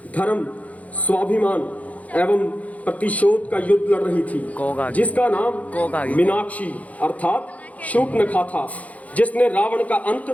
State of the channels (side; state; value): right; late; 0.070 ms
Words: धर्म, स्वाभिमान एवं प्रतिशोध का युद्ध लड़ रही थी, जिसका नाम मीनाक्षी अर्थात शूर्पणखा था, जिसने रावण का अंत